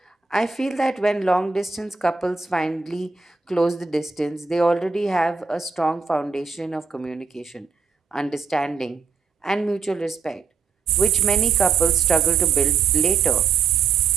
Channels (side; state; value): left; quieter; 5.4 dB